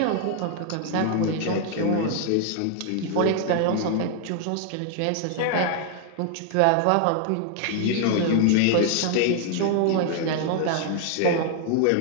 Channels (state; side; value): different; both; correlation 0.00